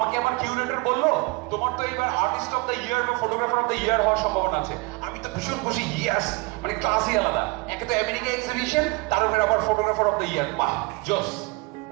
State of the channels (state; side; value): quieter; left; 26.7 dB